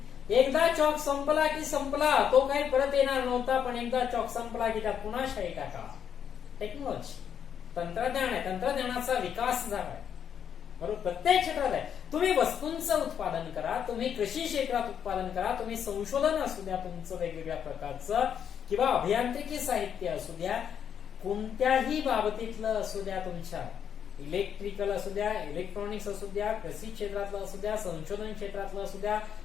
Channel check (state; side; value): quieter; right; 8.3 dB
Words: एकदा चॉक संपला की संपला, तो काही परत येणार नव्हता. पण एकदा चॉक संपला की त्यात पुन्हा शाई टाका. टेक्नॉलॉजी, तंत्रज्ञान आहे. तंत्रज्ञानाचा विकास झाला आहे. बरोबर. प्रत्येक क्षेत्रात आहे. तुम्ही वस्तूंचं उत्पादन करा, तुम्ही कृषी क्षेत्रात उत्पादन करा, तुम्ही संशोधन असू द्या तुमचं वेगवेगळ्या प्रकारचं, किंवा अभियांत्रिकी साहित्य असू द्या, कोणत्याही बाबतीतलं असू द्या, तुमच्या इलेक्ट्रिकल असू द्या, इलेक्ट्रॉनिक्स असू द्या, कृषी क्षेत्रातलं असू द्या, संशोधन क्षेत्रातलं असू द्या,